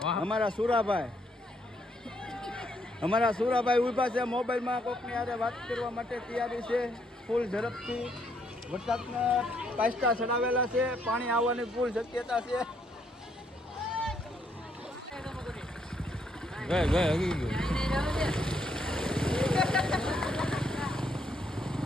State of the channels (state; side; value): normal; both; correlation 0.73